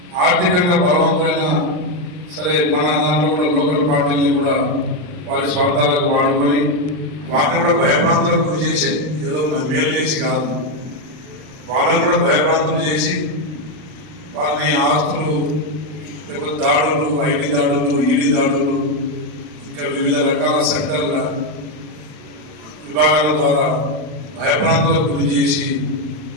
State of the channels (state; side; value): late; left; 40 ms